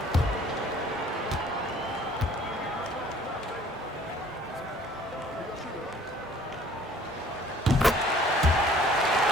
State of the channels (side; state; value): both; normal; correlation 0.55